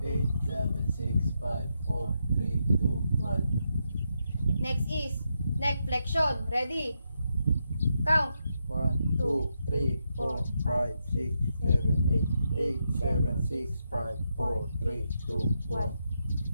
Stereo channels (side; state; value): both; inverted; correlation -0.83